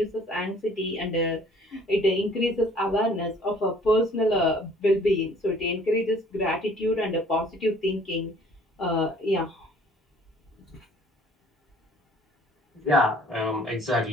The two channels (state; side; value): normal; both; correlation 0.55